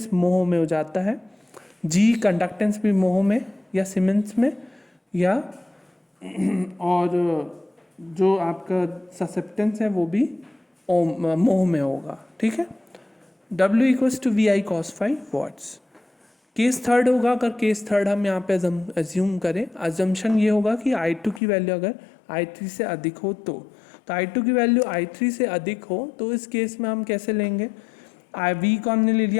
मोह में हो जाता है, G conductance भी मोह में या सीमेंस में, या और जो आपका ससेप्टेंस है वो भी मोह में होगा, ठीक है। W equals to VI cos phi watts. Case third होगा, अगर केस थर्ड हम यहाँ पे एज्यूम करें, अजम्पशन ये होगा कि I2 की वैल्यू अगर I3 से अधिक हो तो I2 की वैल्यू I3 से अधिक हो तो इस केस में हम कैसे लेंगे, V को हमने ले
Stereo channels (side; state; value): right; drops out; at 21.4 s